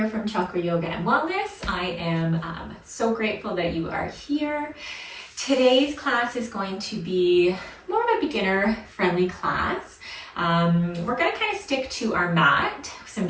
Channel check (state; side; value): identical; both; correlation 1.00